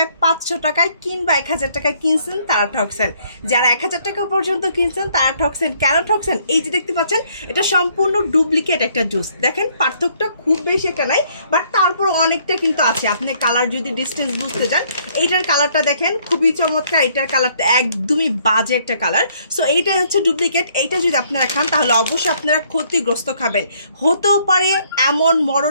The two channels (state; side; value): inverted; both; correlation -0.66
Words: 500 টাকায় কিংবা 1000 টাকায় কিনছেন তারা ঠকছেন। যারা 1000 টাকা পর্যন্ত কিনছেন তারা ঠকছেন। কেন ঠকছেন? এই যে দেখতে পাচ্ছেন এটা সম্পূর্ণ ডুপ্লিকেট একটা জুস। দেখেন পার্থক্যটা খুব বেশি একটা নাই, বাট তারপর অনেকটা কিন্তু আছে। আপনি কালার যদি ডিস্টেন্স বুঝতে যান, এইটার কালারটা দেখেন খুবই চমৎকার, এটার কালারটা একদমই বাজে একটা কালার। সো এইটাই হচ্ছে ডুপ্লিকেট। এইটা যদি আপনারা খান তাহলে অবশ্যই আপনারা ক্ষতিগ্রস্ত খাবেন, হতেও পারে এমন